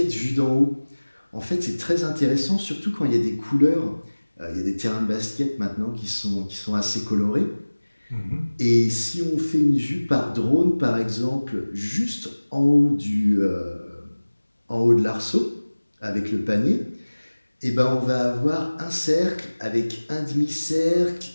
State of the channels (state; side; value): inverted; both; correlation -1.00